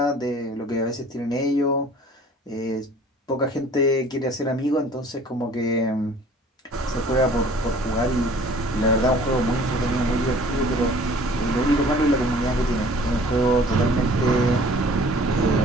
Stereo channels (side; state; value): both; normal; correlation 0.50